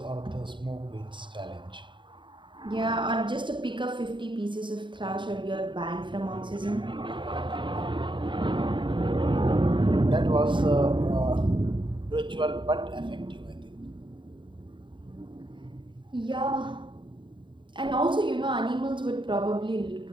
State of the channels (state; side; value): late; left; 0.23 ms